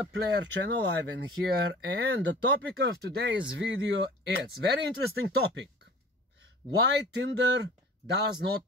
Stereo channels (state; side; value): normal; both; correlation 0.44